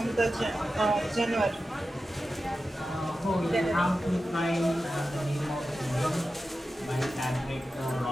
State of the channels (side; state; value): both; normal; correlation 0.92